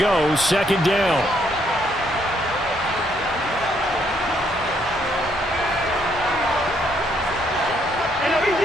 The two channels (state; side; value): normal; both; correlation 0.71